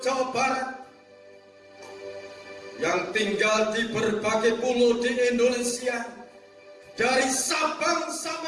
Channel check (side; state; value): both; identical; correlation 1.00